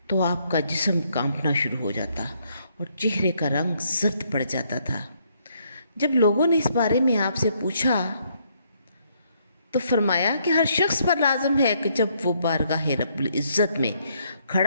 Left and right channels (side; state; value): both; inverted; correlation -0.71